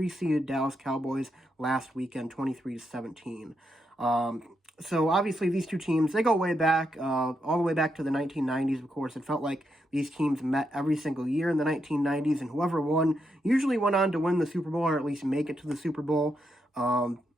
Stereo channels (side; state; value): both; normal; correlation 0.82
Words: Dallas Cowboys last weekend, 23-17. So obviously these two teams, they go way back, all the way back to the 1990s, of course. It felt like these teams met every single year in the 1990s, and whoever won usually went on to win the Super Bowl, or at least make it to the Super Bowl.